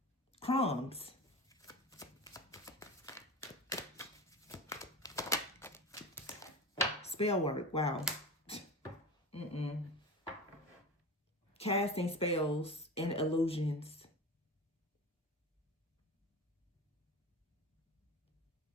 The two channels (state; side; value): normal; both; correlation 0.30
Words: Crumbs. Spell work. Wow. Casting spells and illusions.